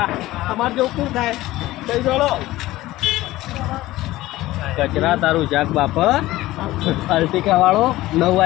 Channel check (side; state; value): right; quieter; 17.0 dB